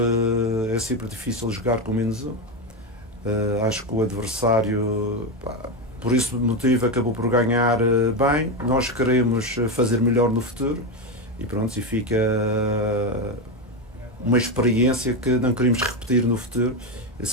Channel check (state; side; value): normal; both; correlation 0.12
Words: difícil jogar com menos um. Acho que o adversário, por esse motivo, acabou por ganhar bem. Nós queremos fazer melhor no futuro e pronto, e fica uma experiência que não queremos repetir no futuro,